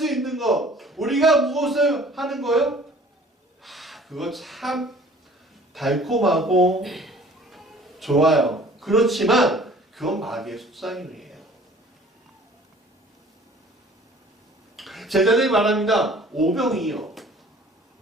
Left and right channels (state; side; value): normal; both; correlation 0.51